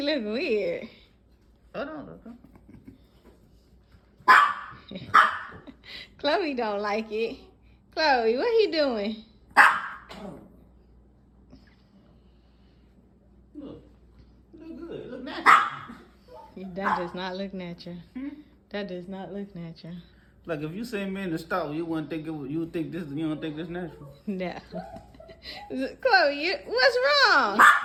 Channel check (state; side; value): identical; both; correlation 1.00